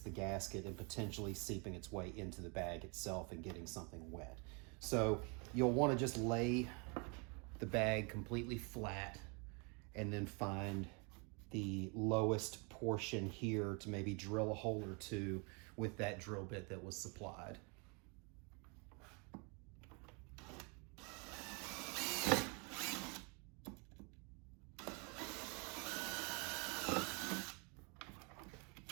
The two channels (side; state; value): left; quieter; 33.1 dB